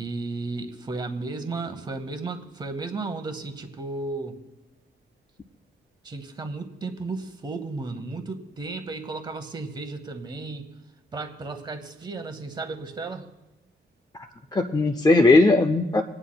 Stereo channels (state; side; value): normal; both; correlation 0.74